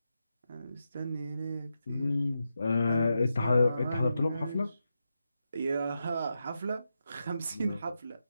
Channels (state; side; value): inverted; both; correlation -0.87